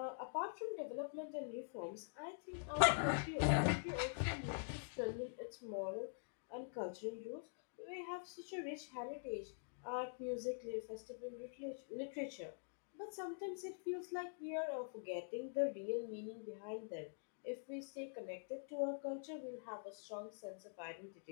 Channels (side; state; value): right; silent; digital silence